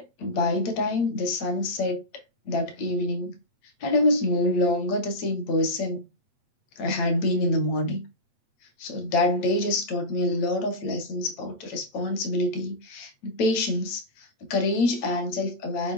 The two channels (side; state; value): right; late; 8.7 ms